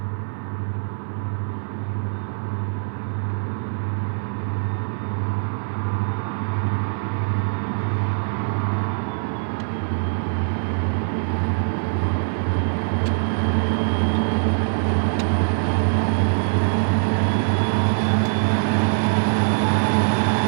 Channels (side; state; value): left; silent; 62 dB below the other